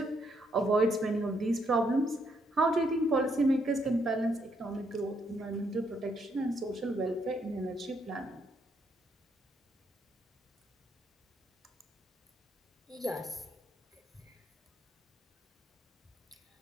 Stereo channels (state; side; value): normal; both; correlation 0.74